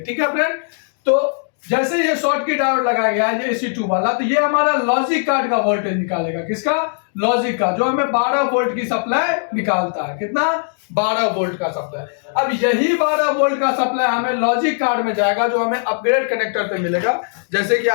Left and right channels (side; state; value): right; silent; digital silence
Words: है फ्रेंड, तो जैसे ये शॉर्टकी डायोड लगाया गया है एसी 2 वाला, तो ये हमारा लॉजिक कार्ड का वोल्टेज निकालेगा। किसका? लॉजिक का, जो हमें 12 वोल्ट की सप्लाई निकालता है। कितना? 12 वोल्ट का सप्लाई। अब यही 12 वोल्ट का सप्लाई हमें लॉजिक कार्ड में जाएगा, जो हमें अपग्रेड कनेक्टर पे मिलेगा। जैसे कि